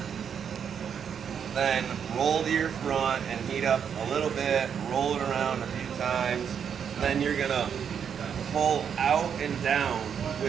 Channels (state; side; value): quieter; left; 7.7 dB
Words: Then roll to your front and heat up a little bit, roll it around a few times. Then you're gonna pull out and down